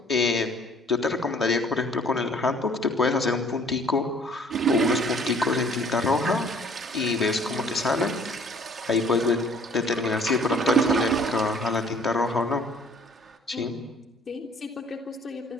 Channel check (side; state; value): both; normal; correlation 0.56